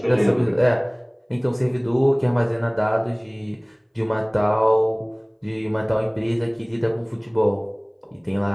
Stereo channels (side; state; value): both; identical; correlation 1.00